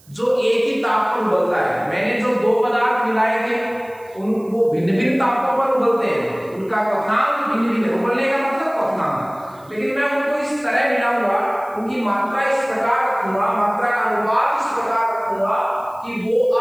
जो एक ही ताप पर उबलता है। मैंने जो दो पदार्थ मिलाए थे वो भिन्न भिन्न तापों पर उबलते हैं, उनका क्वथनांक भिन्न भिन्न, उबलने का मतलब क्वथनांक, लेकिन मैं उनको इस तरह मिलाऊंगा, उनकी मात्रा इस प्रकार रखूंगा, मात्रा का अनुपात इस प्रकार रखूंगा कि वो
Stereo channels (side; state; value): right; noise; hiss, 29 dB below the sound